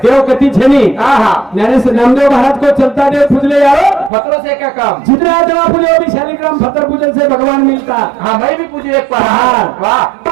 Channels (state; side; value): drops out; left; at 4.1 s